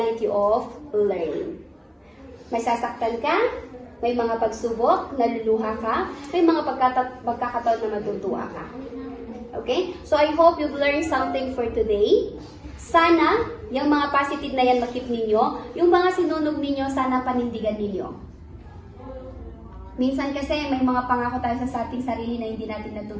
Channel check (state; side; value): identical; both; correlation 1.00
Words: of learning. May sasaktan ka, may mga pagsubok, naluluha ka, may mga pagkakataon na matutuwa ka. Okay? So I hope you've learned something for today. Sana, yung mga positive na yan makip ninyo, yung mga sinunog ninyo, sana panindigan ninyo. Minsan kasi may mga pangako tayo sa ating sarili na hindi natin